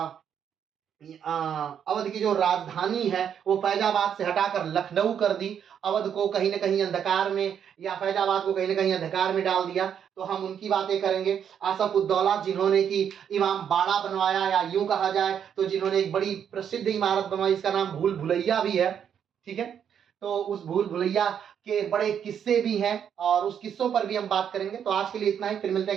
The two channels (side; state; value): left; quieter; 8.4 dB